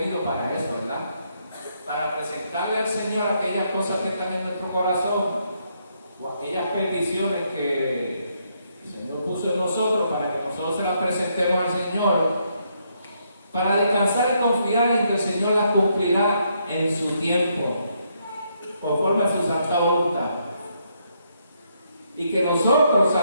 para eso, ¿verdad? Para presentarle al Señor aquellas cosas que están en nuestro corazón o aquellas peticiones que el Señor puso en nosotros para que nosotros se las presentemos al Señor, para descansar y confiar en que el Señor las cumplirá en su tiempo, conforme a su santa voluntad. Y que nosotros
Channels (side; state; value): both; inverted; correlation -0.75